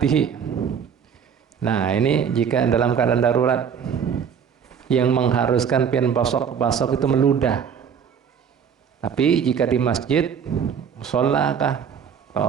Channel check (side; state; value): left; quieter; 7.4 dB